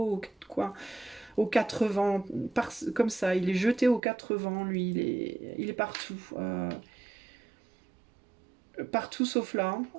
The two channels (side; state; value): left; drops out; at 4.0 s